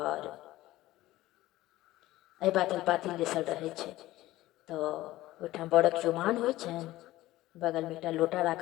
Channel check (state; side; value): quieter; right; 16.6 dB